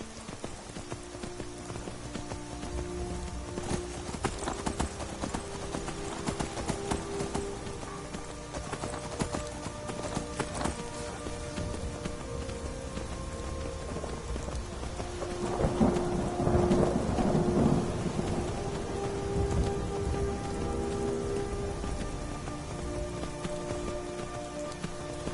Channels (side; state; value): both; identical; correlation 1.00